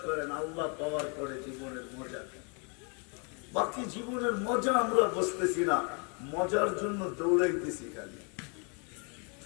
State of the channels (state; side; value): quieter; right; 36.3 dB